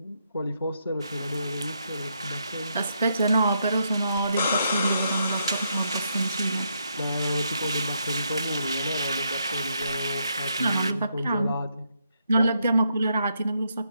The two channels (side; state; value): both; inverted; correlation -0.78